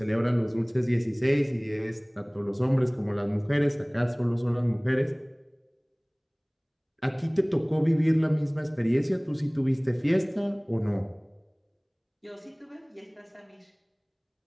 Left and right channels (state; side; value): identical; both; correlation 1.00